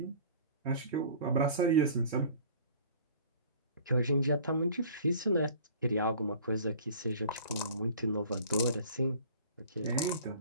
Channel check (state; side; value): inverted; both; correlation -0.47